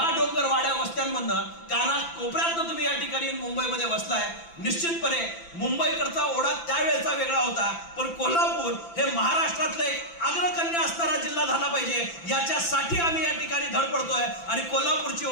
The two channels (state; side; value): late; right; 5.9 ms